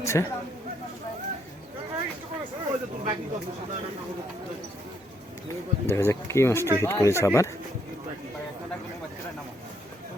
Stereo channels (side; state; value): both; normal; correlation 0.72